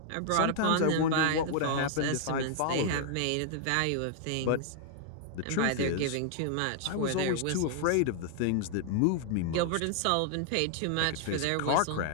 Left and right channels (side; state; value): both; different; correlation 0.00